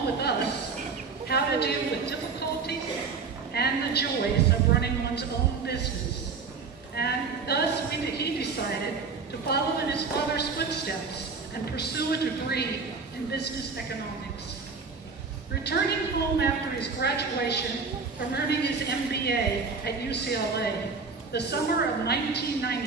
with us, how to deal with difficulties and the joys of running one's own business. And thus he decided to follow in his father's footsteps and pursue a degree in business economics. Returning home after his graduation from earning his MBA at UCLA, the summer of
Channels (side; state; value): left; quieter; 4.9 dB